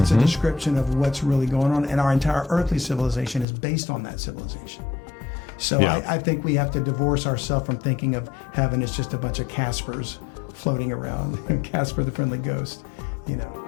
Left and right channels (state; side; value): drops out; right; at 3.5 s